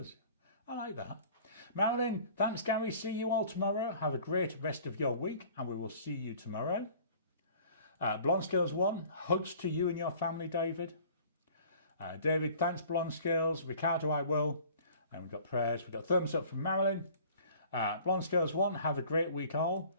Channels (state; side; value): inverted; both; correlation -0.49